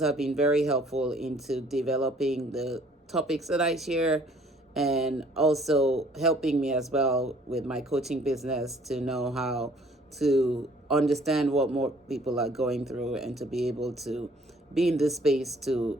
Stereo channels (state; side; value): normal; both; correlation 0.58